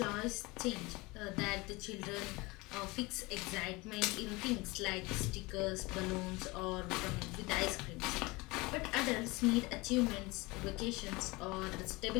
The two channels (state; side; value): quieter; right; 23.7 dB